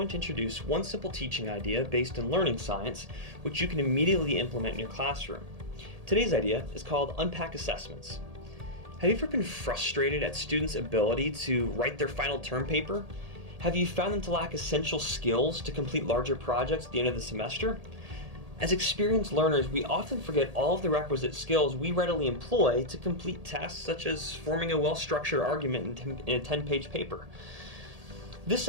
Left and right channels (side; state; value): left; late; 1.8 ms